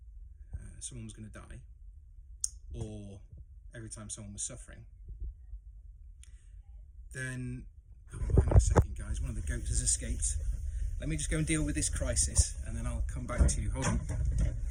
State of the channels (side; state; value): both; identical; correlation 1.00